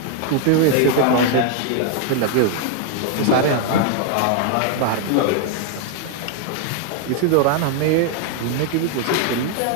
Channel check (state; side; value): different; both; correlation 0.00